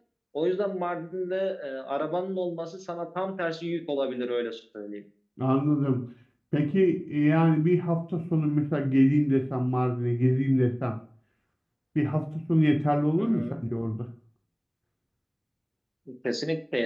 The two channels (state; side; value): identical; both; correlation 1.00